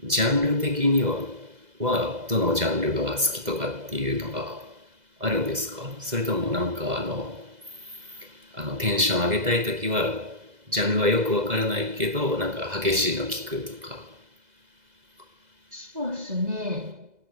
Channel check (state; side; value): late; left; 2.0 ms